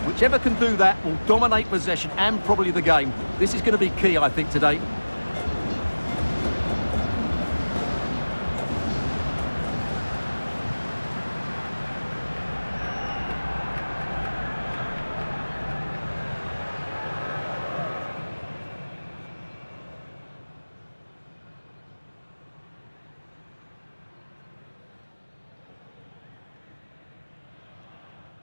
Whichever can do that will dominate possession and probably the game. This is going to be key, I think, today.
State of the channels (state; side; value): inverted; both; correlation -1.00